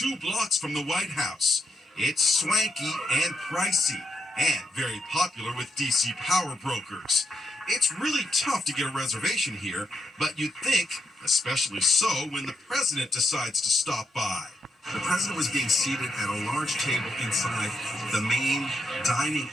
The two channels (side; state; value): both; normal; correlation 0.81